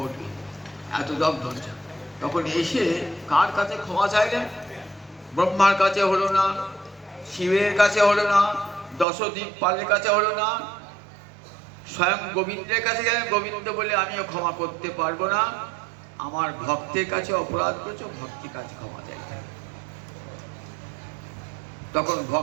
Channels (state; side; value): drops out; left; at 9.1 s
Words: এত দগ্ধ হচ্ছে। তখন এসে কার কাছে ক্ষমা চাইলেন? ব্রহ্মার কাছে হলো না, শিবের কাছে হলো না, দশদ্বীপ পালের কাছে হলো না, স্বয়ং গোবিন্দের কাছে গেলেন। গোবিন্দ বলে আমিও ক্ষমা করতে পারবো না, আমার ভক্তের কাছে অপরাধ করেছ, ভক্তের কাছে ক্ষমা চাইতে। তখন